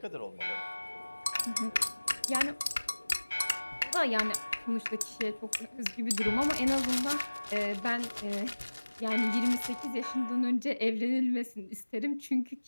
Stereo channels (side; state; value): both; inverted; correlation -1.00